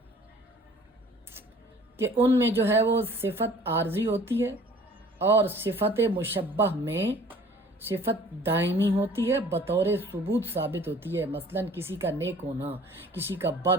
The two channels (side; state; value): both; normal; correlation 0.51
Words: کہ ان میں جو ہے وہ صفت عارضی ہوتی ہے، اور صفت مشبہ میں صفت دائمی ہوتی ہے، بطور ثبوت ثابت ہوتی ہے۔ مثلا کسی کا نیک ہونا، کسی کا